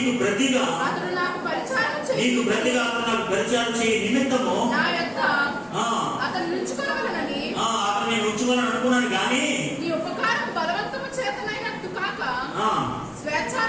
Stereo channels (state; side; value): identical; both; correlation 1.00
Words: ప్రతిగా అతను నాకు పరిచయం చేయ నిమిత్తము అతను నేను ఉంచుకోవాలని అనుకున్నాను. కానీ నీ ఉపకారం బలవంతము చేతనైనట్టు కాక